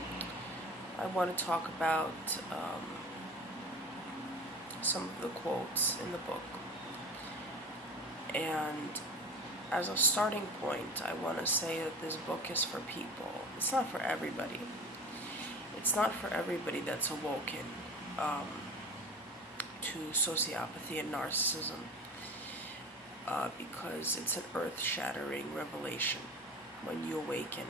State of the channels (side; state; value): both; normal; correlation 0.32